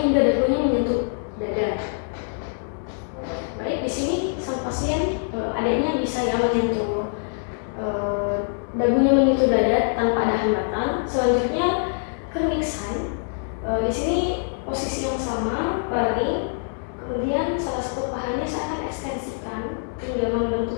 dagunya menyentuh dada. Baik, di sini sang pasien adanya bisa ya menyentuh dagunya menyentuh dada tanpa ada hambatan. Selanjutnya kernik sign. Di sini posisi yang sama, baring. Kemudian salah satu pahanya saya akan ekstensikan hingga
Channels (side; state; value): right; silent; digital silence